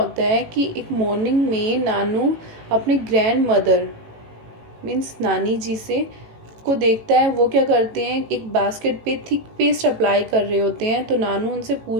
है कि एक मॉर्निंग में नानू अपने ग्रैंड मदर मीन्स नानी जी से को देखता है, वो क्या करते हैं, एक बास्केट पे थिक पेस्ट अप्लाई कर रहे होते हैं। तो नानू उनसे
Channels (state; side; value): late; left; 18 ms